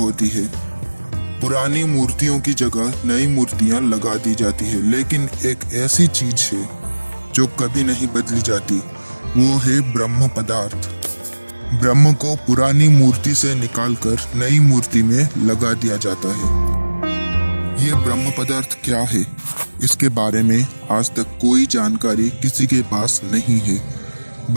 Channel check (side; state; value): both; inverted; correlation -1.00